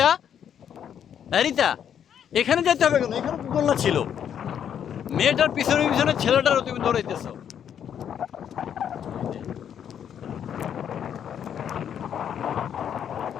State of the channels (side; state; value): right; quieter; 8.9 dB